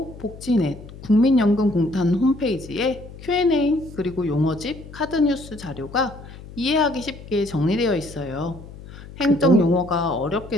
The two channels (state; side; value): noise; left; hum, 16 dB below the sound